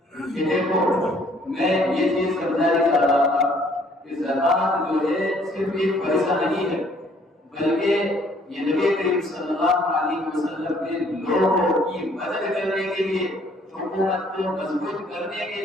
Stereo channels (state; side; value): normal; both; correlation 0.61